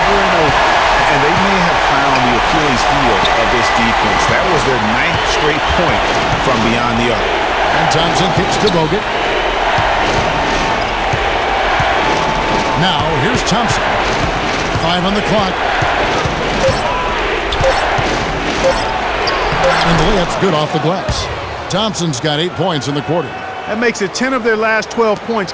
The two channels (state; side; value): identical; both; correlation 1.00